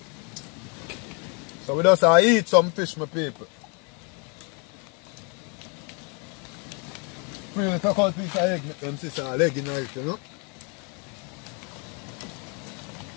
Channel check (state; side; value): quieter; right; 35.0 dB